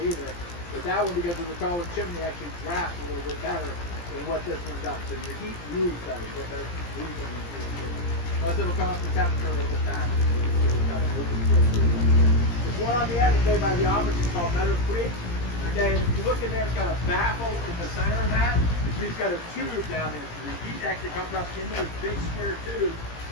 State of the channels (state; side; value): late; right; 17 ms